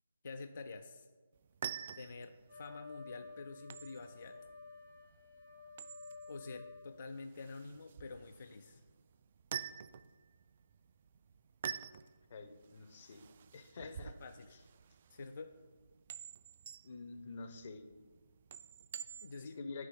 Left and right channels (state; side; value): inverted; both; correlation -0.73